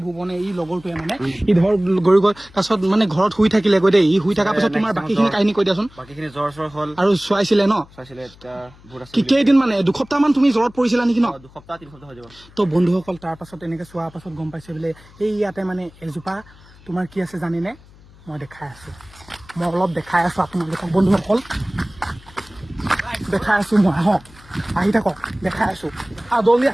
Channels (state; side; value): noise; left; hum, 24 dB below the sound